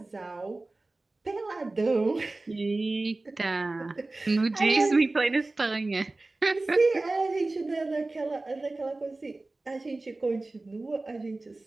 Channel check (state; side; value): quieter; left; 3.1 dB